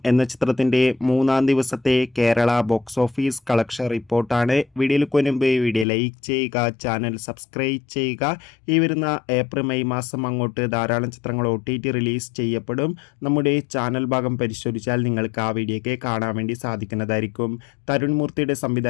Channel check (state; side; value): drops out; right; at 5.9 s